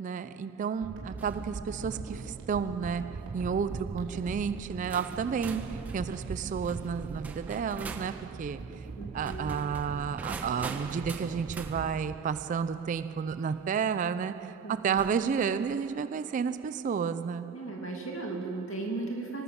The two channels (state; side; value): quieter; left; 5.8 dB